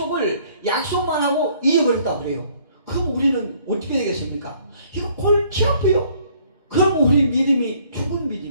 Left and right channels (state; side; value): inverted; both; correlation -0.61